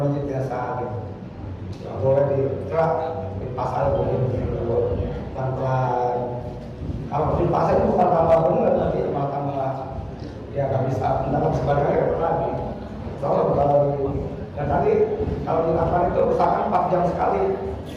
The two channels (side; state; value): both; identical; correlation 1.00